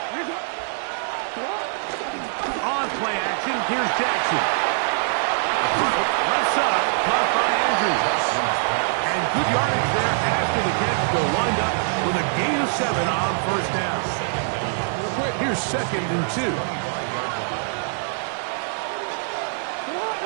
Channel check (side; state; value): left; silent; digital silence